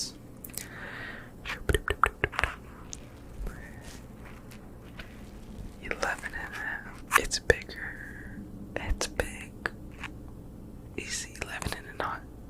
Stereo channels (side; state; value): both; identical; correlation 1.00